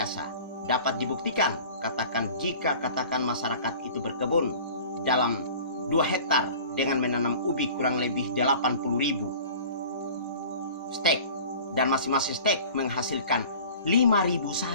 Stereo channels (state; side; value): inverted; both; correlation -0.43